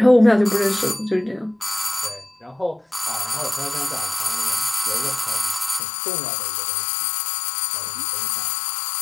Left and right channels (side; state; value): right; drops out; at 5.8 s